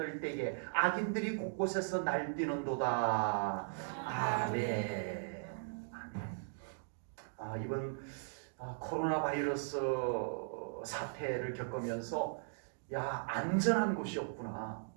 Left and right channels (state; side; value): silent; left; digital silence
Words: 때에 악인들이 곳곳에서 날뛰는도다. 아멘. 이번 코로나 바이러스 사태를 겪으면서 안전한 곳이 없구나.